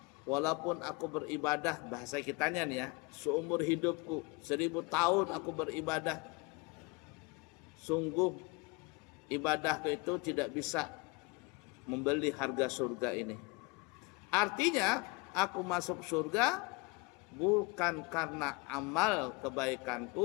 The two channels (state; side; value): quieter; right; 26.1 dB